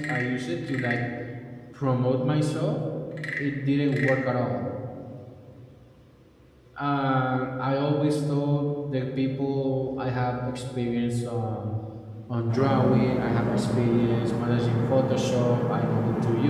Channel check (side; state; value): both; identical; correlation 1.00